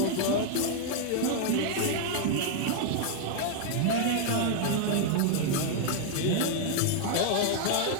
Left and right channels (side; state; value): both; different; correlation 0.00